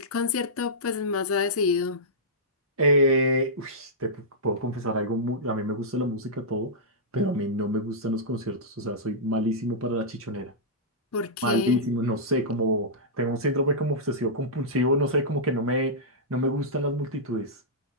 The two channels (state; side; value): normal; both; correlation -0.13